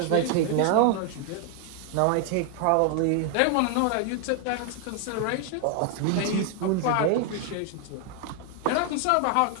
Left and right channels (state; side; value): different; both; correlation 0.00